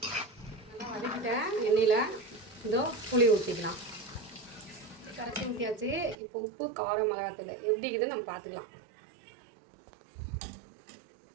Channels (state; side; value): drops out; left; at 6.2 s